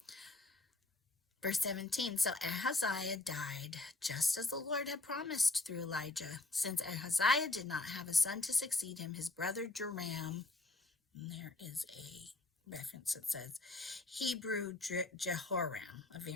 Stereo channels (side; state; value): right; quieter; 3.1 dB